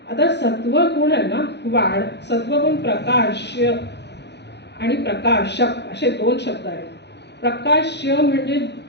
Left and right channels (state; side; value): late; right; 0.50 ms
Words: आता सत्वगुण आहे ना सत्वगुण प्रकाश्य आणि प्रकाशक असे 2 शब्द आहेत. प्रकाश्य म्हणजे